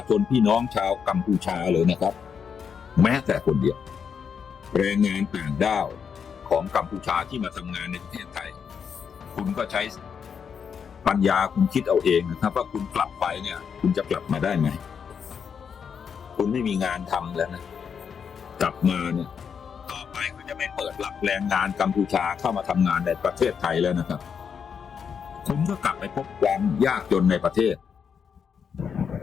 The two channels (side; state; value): right; quieter; 6.9 dB